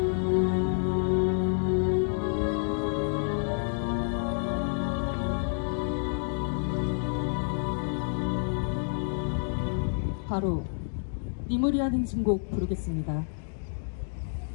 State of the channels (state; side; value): silent; right; digital silence